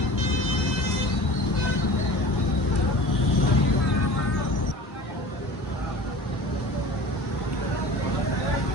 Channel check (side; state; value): both; normal; correlation 0.38